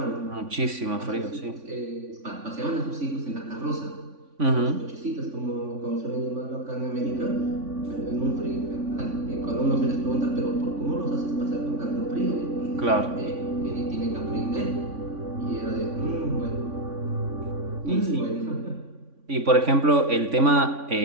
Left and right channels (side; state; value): left; late; 3.5 ms